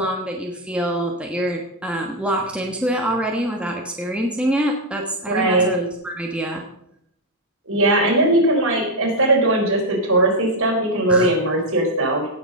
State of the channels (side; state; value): both; normal; correlation 0.01